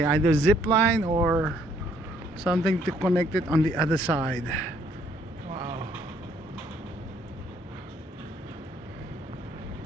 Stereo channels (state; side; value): normal; both; correlation 0.65